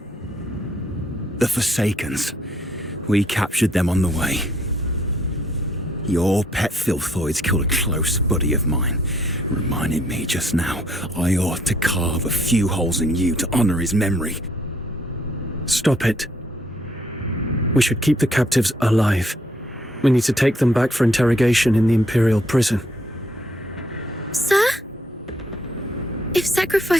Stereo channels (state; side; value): normal; both; correlation 0.67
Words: The Forsakens. We captured them on the way. Your pet filthoids killed a close buddy of mine. Reminded me just now I ought to carve a few holes in you to honor his memory. Stop it. We should keep the captives alive. We need to take them back for interrogation in the Imperial prison. Sir? If